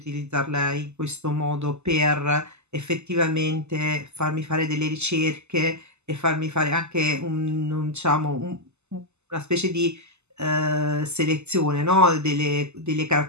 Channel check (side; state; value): left; late; 0.82 ms